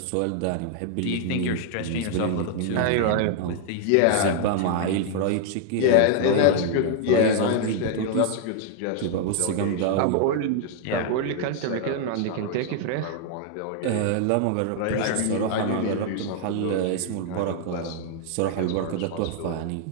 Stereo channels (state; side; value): different; both; correlation 0.00